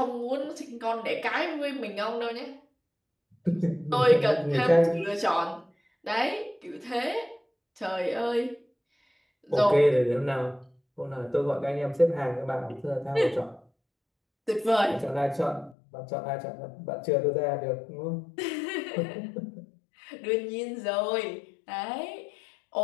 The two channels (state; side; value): drops out; right; at 15.8 s